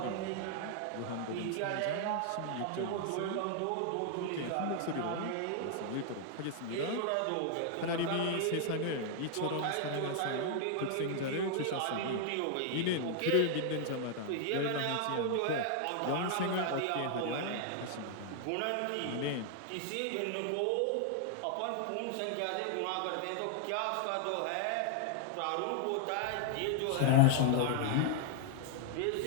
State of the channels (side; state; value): both; different; correlation 0.00